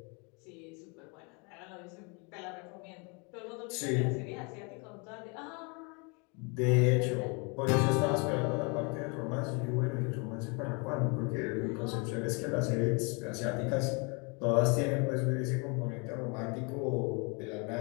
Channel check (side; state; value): right; quieter; 32.5 dB